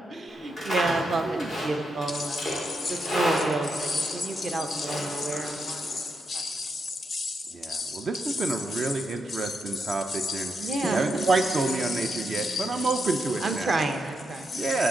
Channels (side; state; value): both; normal; correlation 0.82